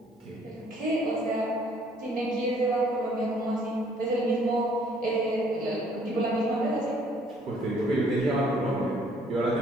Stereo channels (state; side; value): normal; both; correlation 0.62